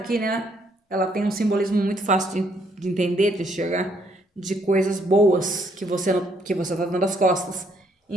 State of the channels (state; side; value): normal; both; correlation 0.70